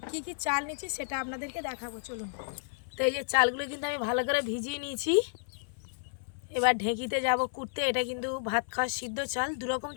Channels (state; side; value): silent; right; 57 dB below the other